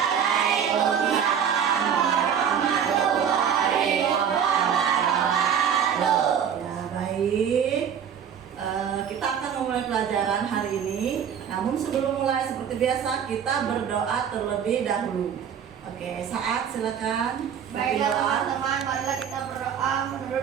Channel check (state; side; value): quieter; left; 8.1 dB